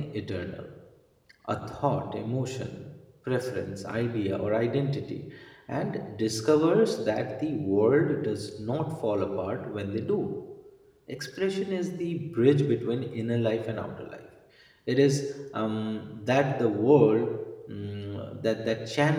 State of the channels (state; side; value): identical; both; correlation 1.00